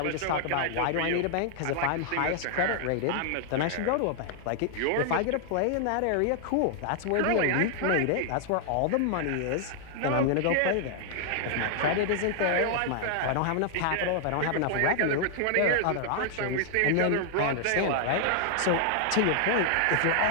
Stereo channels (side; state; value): both; different; correlation 0.00